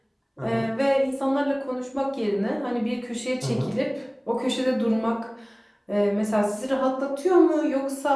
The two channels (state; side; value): identical; both; correlation 1.00